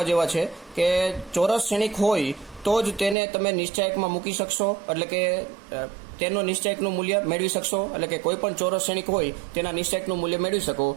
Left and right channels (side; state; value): left; drops out; at 3.2 s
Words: જેવા છે કે ચોરસ શ્રેણિક હોય તો જ તેને તમે નિશ્ચાયકમાં મૂકી શકશો, એટલે કે તેનો નિશ્ચાયકનું મૂલ્ય મેળવી શકશો. એટલે કે કોઈ પણ ચોરસ શ્રેણિક હોય તેના નિશ્ચાયકનું મૂલ્ય મેળવી શકો.